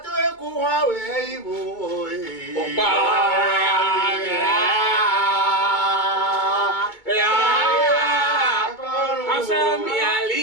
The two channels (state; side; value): late; right; 2.2 ms